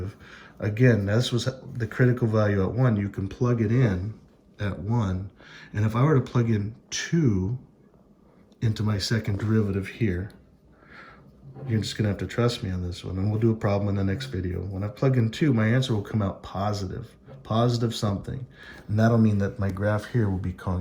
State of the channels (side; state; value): both; identical; correlation 1.00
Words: again, this was the critical value at 1. You can plug it in at 1. And if I were to plug in 2 into my second derivative here, you're just gonna have to trust me on this one, and we'll do a problem in the next video. When I plug in 2, my answer will come out positive something. And that'll mean that my graph here will be